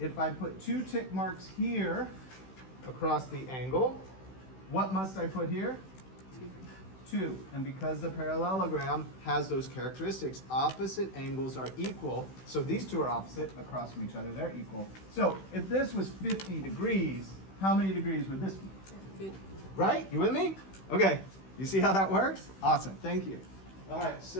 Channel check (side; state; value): right; late; 16 ms